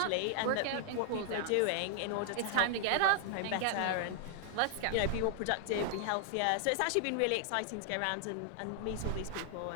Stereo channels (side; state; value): both; different; correlation 0.00